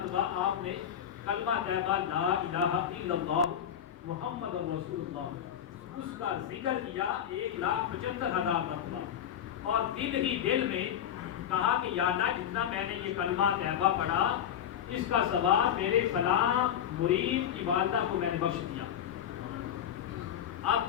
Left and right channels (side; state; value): right; quieter; 9.6 dB